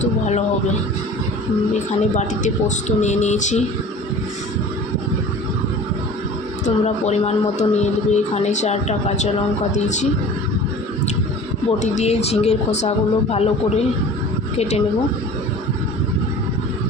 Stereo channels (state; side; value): normal; both; correlation 0.42